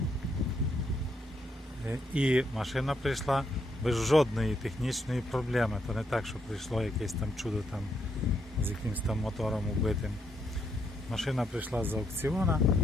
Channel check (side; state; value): both; normal; correlation 0.76